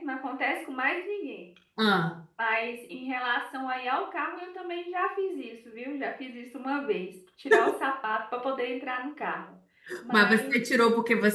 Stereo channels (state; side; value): identical; both; correlation 1.00